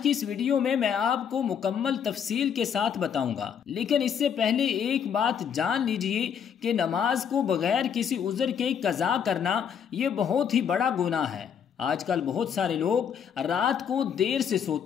इस वीडियो में मैं आपको मुकम्मल तफसील के साथ बताऊंगा। लेकिन इससे पहले एक बात जान लीजिए कि नमाज को बगैर किसी उज़र के कज़ा करना ये बहुत ही बड़ा गुनाह है। आजकल बहुत सारे लोग रात को देर से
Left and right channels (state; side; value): quieter; right; 7.8 dB